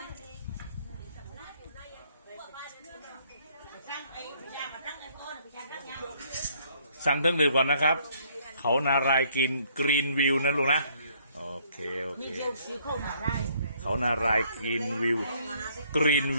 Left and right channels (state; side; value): inverted; both; correlation -0.65